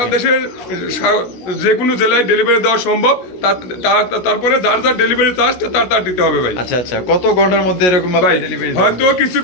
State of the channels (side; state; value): right; late; 16 ms